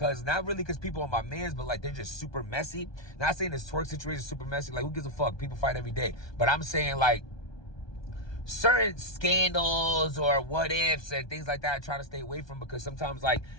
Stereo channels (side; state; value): right; late; 1.2 ms